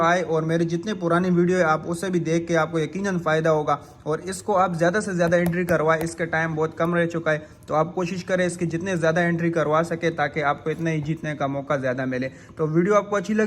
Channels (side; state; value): both; identical; correlation 1.00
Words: और मेरी जितनी पुरानी वीडियो है आप उसे भी देख के आपको यकीनन फ़ायदा होगा। और इसको आप ज़्यादा से ज़्यादा एंट्री करवाएं, इसका टाइम बहुत कम रह चुका है। तो आप कोशिश करें इसकी जितने ज़्यादा एंट्री करवा सके ताकि आपको इतना ही जीतने का मौका ज़्यादा मिले। तो वीडियो आपको अच्छी